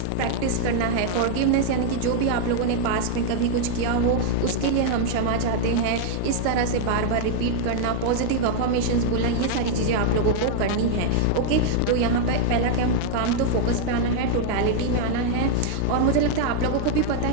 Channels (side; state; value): both; different; correlation -0.01